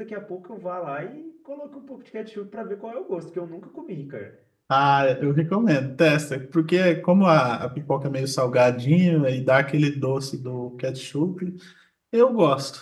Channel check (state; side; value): identical; both; correlation 1.00